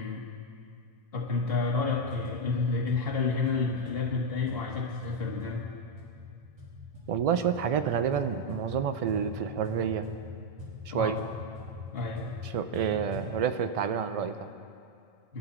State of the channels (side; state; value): left; late; 1.6 ms